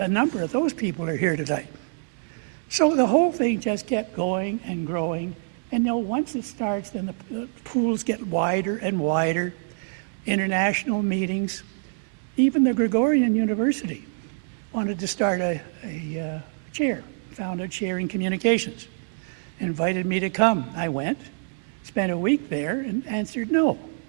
number of those people are here tonight. So the whole thing just kept going and growing. And once it starts, then the pools get wider and wider. International meetings. Even the Gregorian University wanted to start a chair, found a chair in communications. Invited me to come. I went, spent a week there, and answered no.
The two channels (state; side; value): silent; left; digital silence